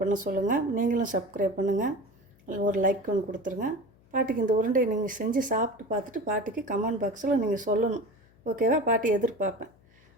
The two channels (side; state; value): left; noise; hum, 30 dB below the sound